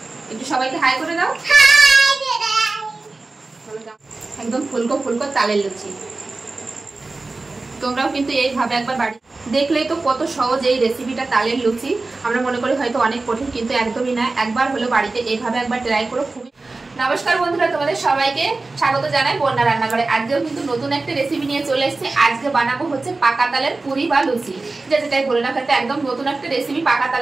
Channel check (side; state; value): left; quieter; 3.5 dB